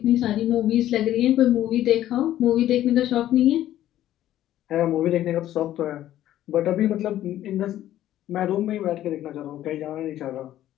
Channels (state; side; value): quieter; right; 12.8 dB